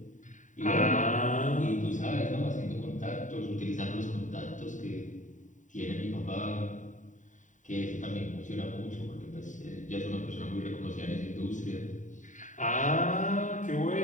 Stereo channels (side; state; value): right; late; 0.36 ms